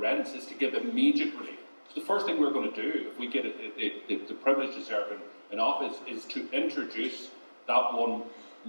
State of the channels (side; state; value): both; inverted; correlation -1.00